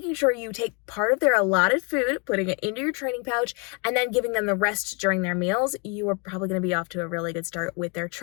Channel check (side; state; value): right; quieter; 33.3 dB